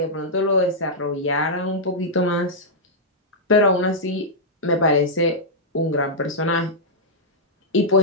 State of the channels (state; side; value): normal; both; correlation -0.08